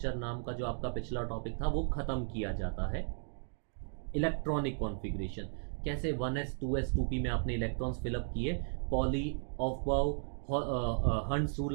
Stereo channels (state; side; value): silent; left; digital silence